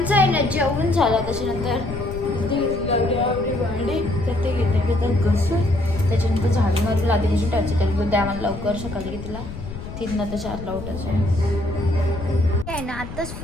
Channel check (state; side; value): noise; left; rumble, 10 dB below the sound